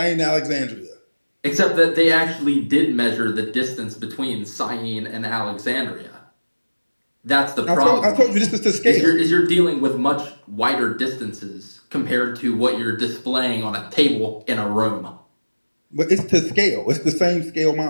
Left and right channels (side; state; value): both; inverted; correlation -1.00